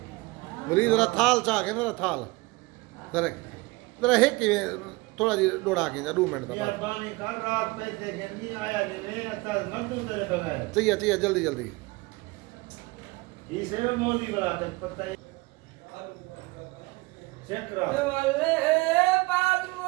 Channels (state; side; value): quieter; left; 23.6 dB